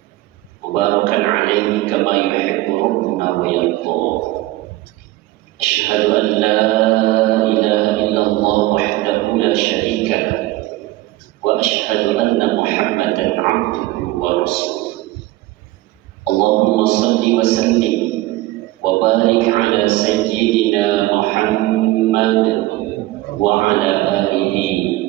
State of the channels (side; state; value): left; quieter; 17.8 dB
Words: Mubarakan alaihi kama yuhibbu rabbuna wa yarda. Asyhadu an la ilaha illallah wahdahu la syarika lah wa asyhadu anna Muhammadan abduhu wa rasuluh. Allahumma salli wa sallim wa barik ala sayyidina Muhammad wa ala